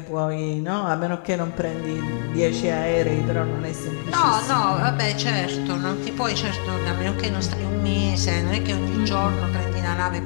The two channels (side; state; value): right; silent; 63 dB below the other